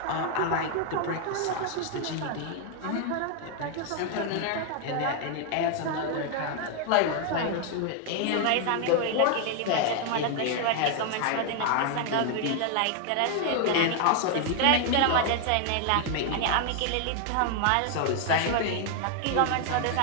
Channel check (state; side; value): different; both; correlation 0.00